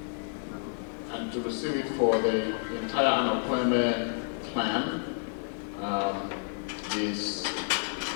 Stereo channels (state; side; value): silent; right; digital silence